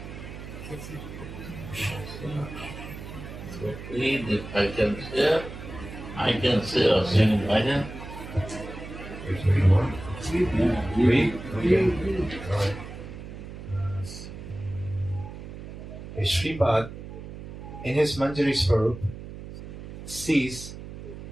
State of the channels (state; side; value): noise; right; hum, 12 dB below the sound